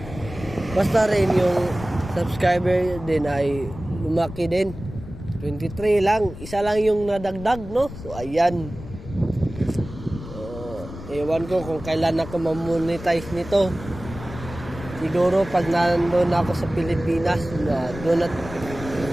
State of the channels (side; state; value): left; noise; rumble, 12 dB below the sound